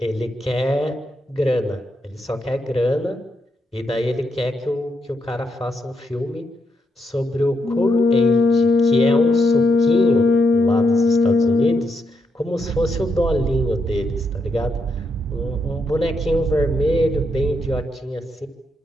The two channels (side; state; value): both; normal; correlation 0.80